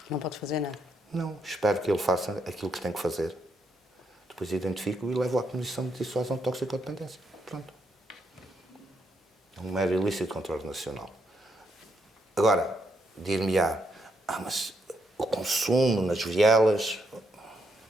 Não pode fazer nada. Não. Espero que ele faça aquilo que tem que fazer. Depois identifico e levo à Comissão de Dissuasão de Toxicodependência. Pronto. É um mero ilícito de controle nacional. Agora, dir-me-á, mas o consumo nas vielas... O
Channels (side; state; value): both; normal; correlation 0.78